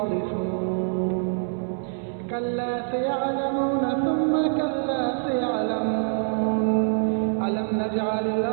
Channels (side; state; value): left; silent; 62 dB below the other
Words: كلا سيعلمون ثم كلا سيعلمون. ألم نجعل